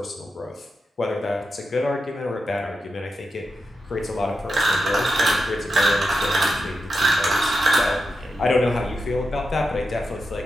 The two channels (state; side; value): normal; both; correlation 0.89